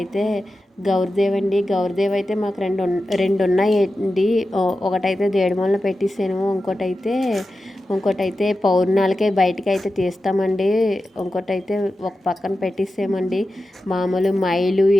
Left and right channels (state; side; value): normal; both; correlation 0.92